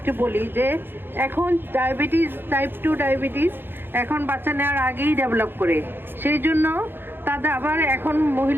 বলি যে এখন ডায়াবেটিস, টাইপ 2 ডায়াবেটিস এখন বাচ্চা নেওয়ার আগেই ডেভেলপ করে, সেই জন্য তাদের আবার এখন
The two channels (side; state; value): left; late; 0.10 ms